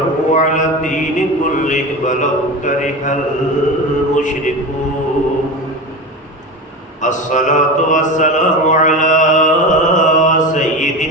على الدين كله ولو كره المشركون الصلاة والسلام على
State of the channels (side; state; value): both; normal; correlation 0.25